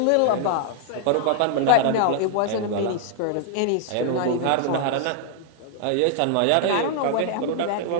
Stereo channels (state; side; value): different; both; correlation -0.01